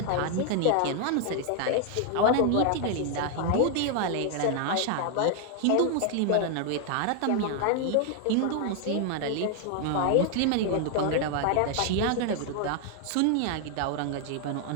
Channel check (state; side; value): different; both; correlation 0.00